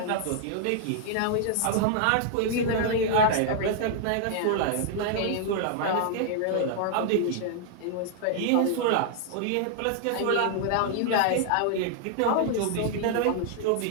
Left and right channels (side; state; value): both; different; correlation -0.01